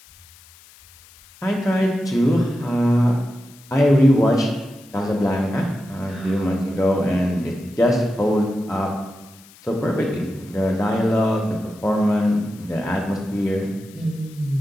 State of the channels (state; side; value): noise; left; hiss, 25 dB below the sound